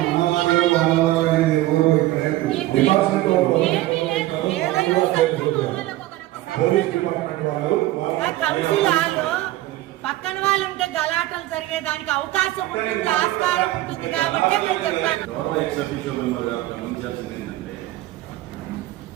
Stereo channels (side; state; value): left; quieter; 16.4 dB